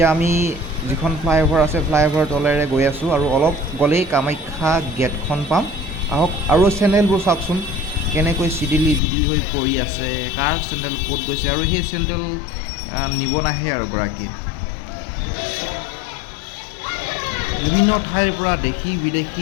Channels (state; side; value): drops out; right; at 9.0 s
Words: আমি যিখন ফ্লাইঅভাৰ আছে ফ্লাইঅভাৰ তলেৰে গৈ আছোঁ আৰু অলপ গ'লেই কামাখ্যা গেটখন পাম আহক আৰু চেণ্ডেলবোৰ চাওকচোন কেনেকৈ চিডিলি হৈ পৰি আছে কাৰ চেণ্ডেল ক'ত গৈছে আৰু সেই চেণ্ডেল নিব নাহে আৰু গৰাকীয়ে বিভিন্ন ঠাইৰ পৰা দেশী